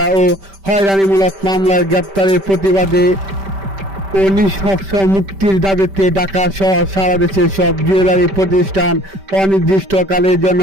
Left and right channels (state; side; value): late; left; 5.1 ms